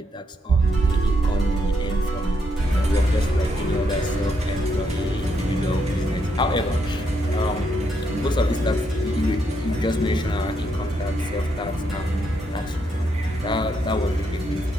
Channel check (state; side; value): normal; both; correlation 0.77